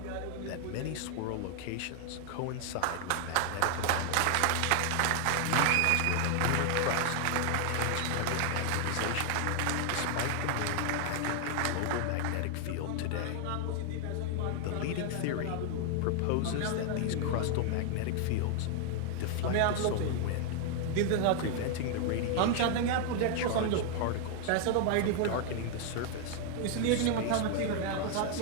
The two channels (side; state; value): both; different; correlation 0.00